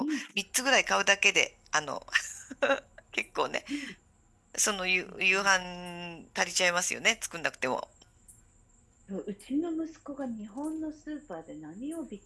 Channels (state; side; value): identical; both; correlation 1.00